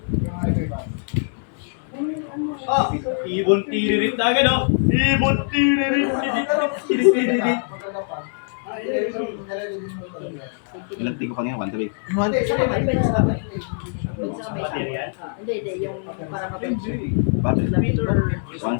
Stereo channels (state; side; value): silent; right; digital silence